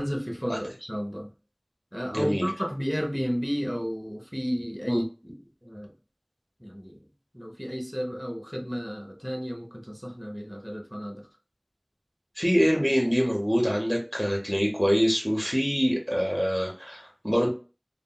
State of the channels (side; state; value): both; identical; correlation 1.00